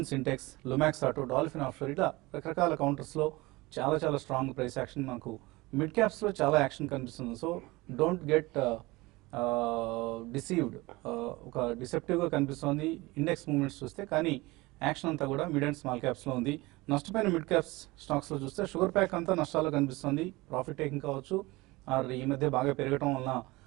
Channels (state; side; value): quieter; left; 21.8 dB